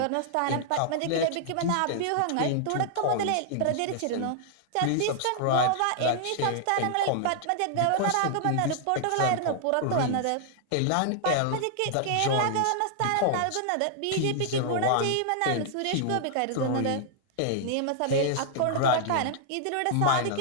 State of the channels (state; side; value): different; both; correlation -0.01